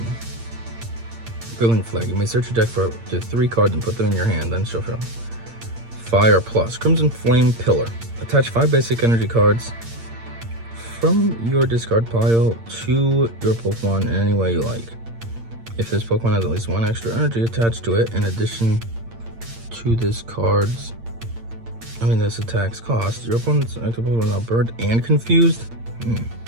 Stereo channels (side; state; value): left; late; 8.7 ms